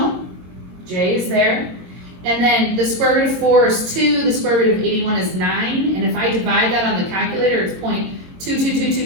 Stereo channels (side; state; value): left; late; 22 ms